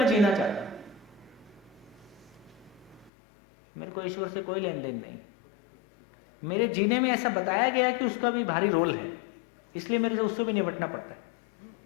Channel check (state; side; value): drops out; right; at 3.1 s